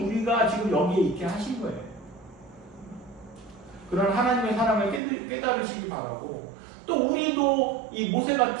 지금 여기에 있게 하신 거예요. 그런 하나님의 사랑을 깨달으시기 바라고 또 우리도 이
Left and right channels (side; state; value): left; drops out; at 5.0 s